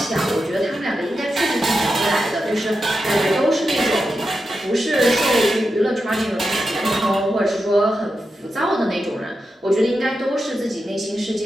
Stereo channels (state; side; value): normal; both; correlation 0.89